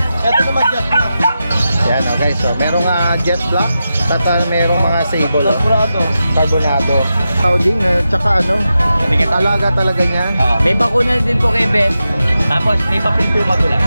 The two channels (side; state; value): both; inverted; correlation -0.90